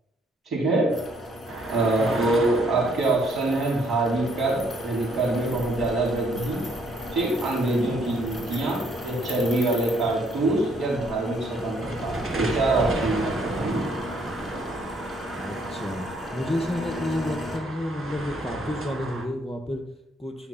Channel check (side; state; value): both; normal; correlation 0.67